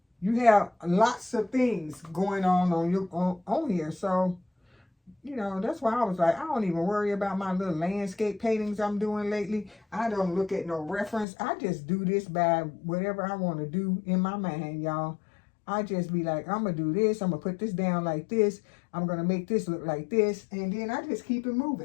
you have lots of things going on here. So, that's why I was like, I don't even worry about my little landscape paintings I'm doing lately. I don't look at no reference. I just do this by whatever I want to do in my mind, y'all. I just be like, I'm going to do this. I'm going to put this down like this. I'm going to make this look like this. And then I just keep it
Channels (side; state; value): right; drops out; at 11.2 s